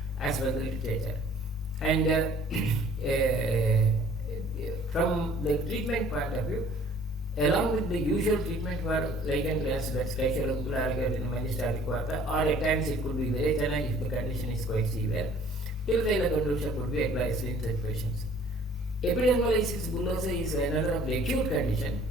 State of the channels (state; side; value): normal; both; correlation 0.54